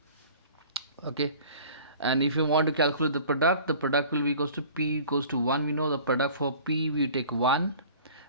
Okay, and if you want to calculate the product will be equals to p equals to 1. We know the product for p, we take 1.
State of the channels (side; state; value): both; inverted; correlation -0.46